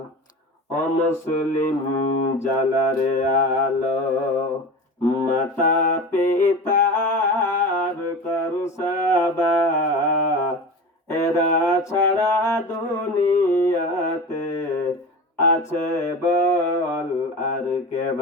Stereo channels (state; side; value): normal; both; correlation 0.30